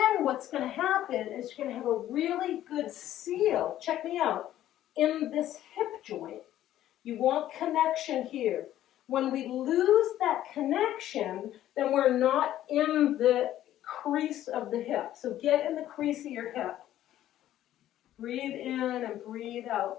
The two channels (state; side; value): quieter; right; 12.8 dB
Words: what's going to happen is you're going to have a really good seal, check me out, in this hip joint. You want connection here. When we lose that connection, then we're not in the crease of the hip. So get in the crease of your hip. Breathe in and breathe